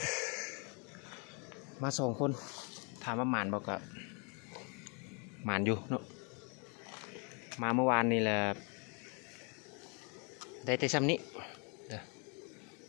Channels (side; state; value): right; quieter; 34.4 dB